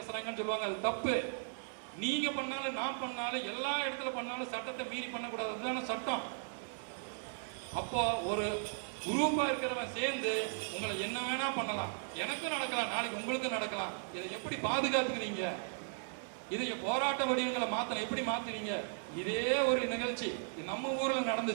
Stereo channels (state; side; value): silent; left; digital silence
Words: சொல்லுவாங்க. அது தப்பு. நீங்க பண்ணாலும் நான் பண்ணாலும் எல்லா இடத்துல பண்ணாலும் சட்டத்தை மீறி பண்ணக்கூடாது. அதுதான சட்டம். அப்போ ஒரு குரூப்பா இருக்கிறவன் சேர்ந்து உங்களை என்ன வேணா பண்ணலாம். எனக்கும் நடக்கலாம், நாளைக்கு உங்களுக்கும் நடக்கலாம். இதை எப்படி பாதுகாத்துக்குவீங்க? இதை போராட்ட வடிவங்களை மாத்தணும். எப்படி மாத்துவீங்க? இதே ஒரு நிகழ்ச்சி நம்ம ஊர்ல